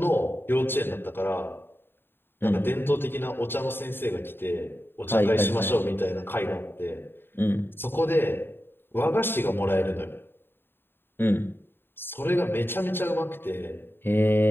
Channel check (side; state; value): right; late; 0.10 ms